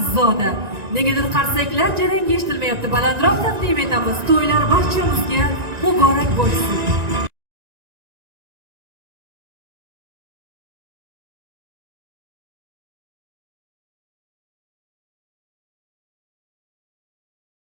Negadir qarsaklar jarangi eshitilmayapti. Balandroq taqdim etamiz. To'ylar barchamizga muborak bo'lsin.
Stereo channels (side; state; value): left; late; 1.9 ms